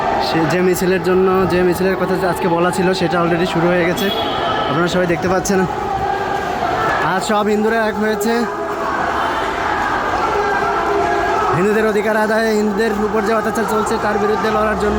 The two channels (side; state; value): both; identical; correlation 1.00